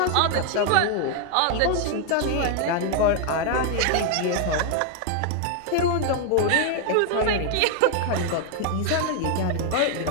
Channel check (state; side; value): different; both; correlation 0.00